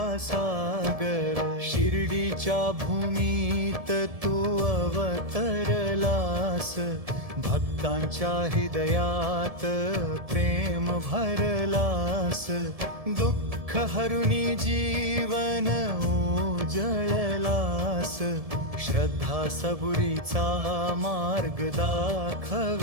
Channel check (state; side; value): late; left; 1.7 ms